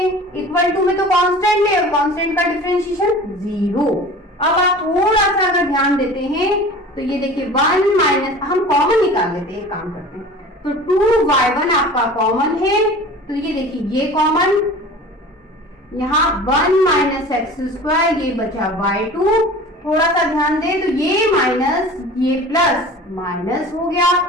इक्वल टू में तो कांस्टेंट है और कांस्टेंट का डिफरेंशिएशन 0। अब आप थोड़ा सा अगर ध्यान देते हैं तो ये देखिए 1 माइनस, हम कॉमन निकाल लेते हैं, काम करते हैं। तो 2y1 आपका कॉमन है, तो ये देखिए ये कॉमन, यहाँ 1 माइनस एक्स स्क्वायर, ये बचा y2। थोड़ा सा ध्यान दे तो ये माइनस ये प्लस माइनस हो गया।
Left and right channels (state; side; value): normal; both; correlation 0.40